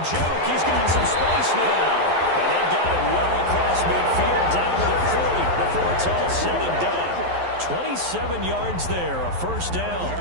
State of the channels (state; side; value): late; left; 11 ms